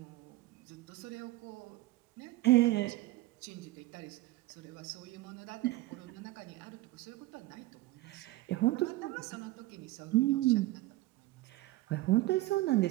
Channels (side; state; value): left; quieter; 17.9 dB